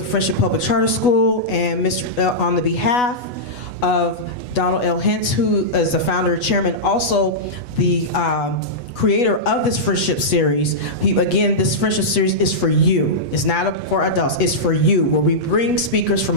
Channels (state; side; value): late; right; 8.2 ms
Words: Friendship Public Charter School, and on the behalf of Donald L. Hintz, who is the founder and chairman, also the creator of this friendship series. Again, this friendship series is for you. It's not for adults, it's for you, where we bring speakers